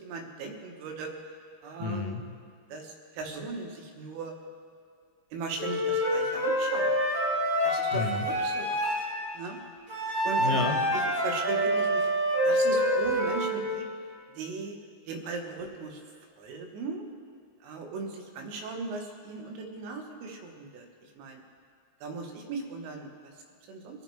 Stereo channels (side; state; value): left; late; 19 ms